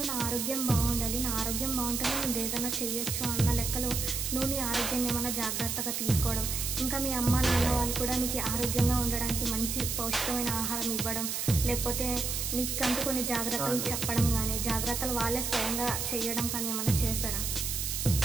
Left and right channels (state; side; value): noise; right; hiss, 2 dB below the sound